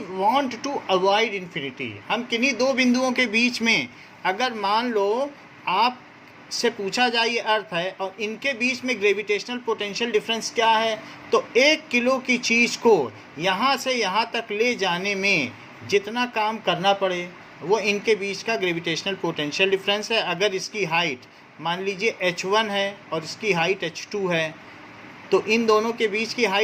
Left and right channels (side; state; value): both; identical; correlation 1.00